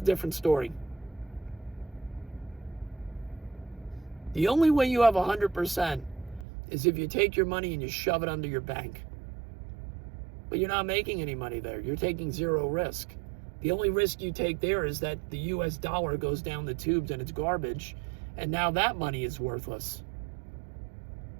a different story. The only way you have 100% is if you take your money and you shove it under your bank. But you're not making any money there. You're taking zero risk. The only risk you take there is that the US dollar goes down the tubes and it's garbage, and now that money is worthless.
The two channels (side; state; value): left; drops out; at 6.5 s